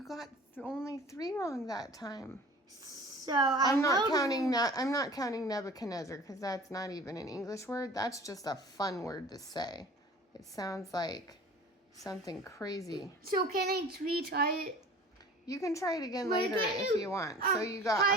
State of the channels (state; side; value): normal; both; correlation 0.44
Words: got only 3 wrong that time. So I'm not counting Nebuchadnezzar because that's not even an English word. That's just a fun word to say. It sounds like something crazy. So can I retry it? You can try it again later if you want. So you got